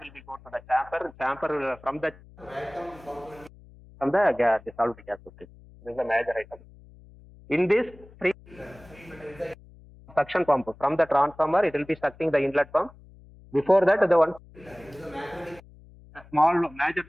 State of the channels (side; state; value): left; noise; hum, 23 dB below the sound